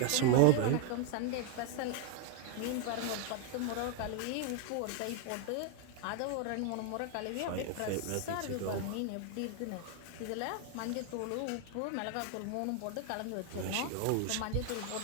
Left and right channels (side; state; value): both; different; correlation 0.00